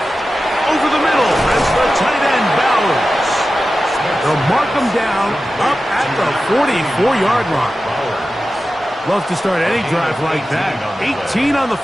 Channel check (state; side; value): normal; both; correlation 0.93